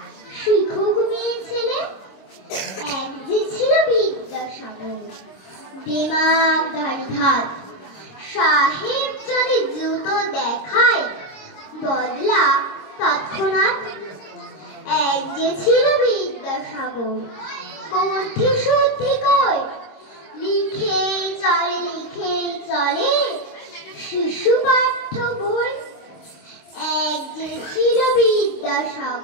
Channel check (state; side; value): late; right; 26 ms